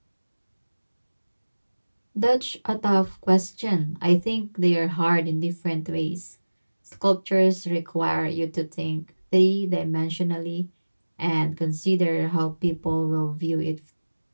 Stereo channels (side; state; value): both; inverted; correlation -1.00